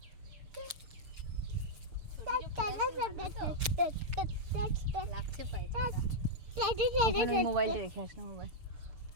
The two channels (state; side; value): late; left; 6.8 ms